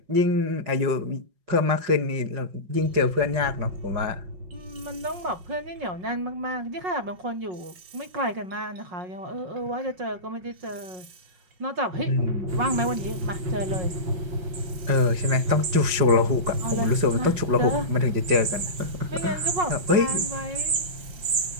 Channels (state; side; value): late; left; 5.5 ms